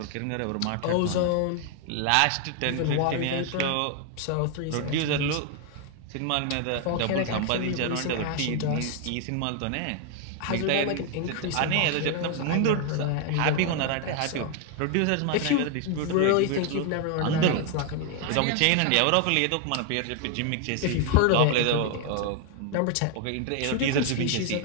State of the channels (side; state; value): both; different; correlation 0.00